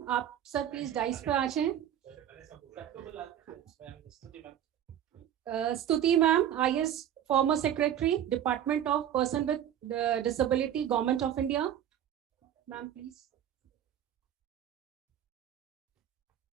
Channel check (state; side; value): quieter; left; 10.4 dB